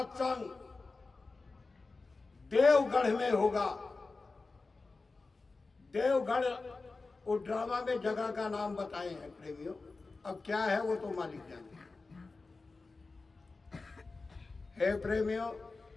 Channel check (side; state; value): right; quieter; 3.8 dB